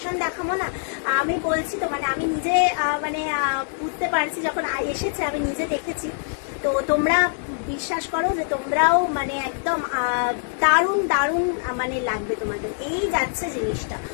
দেখাবো না, আমি বলছি তো, মানে আমি নিজে মানে বুঝতে পারছি, যখন এসেছে আমি নিজে দেখেছি, তো তোমরা বিশ্বাস করো যে তোমরাও মানে একদম দারুণ দারুণ মানে লাগবে তোমাদের। এই যাচ্ছে জিনিসটা,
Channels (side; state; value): right; silent; digital silence